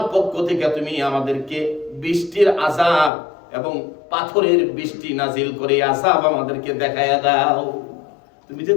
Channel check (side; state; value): right; drops out; at 3.1 s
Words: পক্ষ থেকে তুমি আমাদেরকে বৃষ্টির আযাব এবং পাথরের বৃষ্টি নাজিল করে আযাব আমাদেরকে দেখায়া দাও। তুমি যে